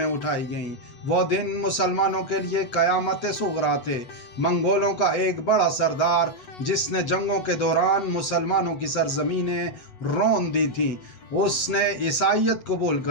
اٹھائی گئیں۔ وہ دن مسلمانوں کے لیے قیامت صغریٰ تھے۔ منگولوں کا ایک بڑا سردار، جس نے جنگوں کے دوران مسلمانوں کی سرزمینیں رون دی تھیں، اس نے عیسائیت قبول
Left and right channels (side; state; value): right; late; 8.2 ms